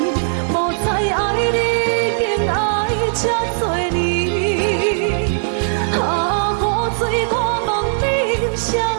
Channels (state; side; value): silent; left; digital silence